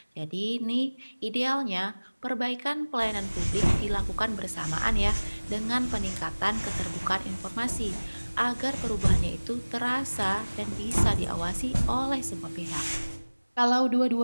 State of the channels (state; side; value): inverted; both; correlation -1.00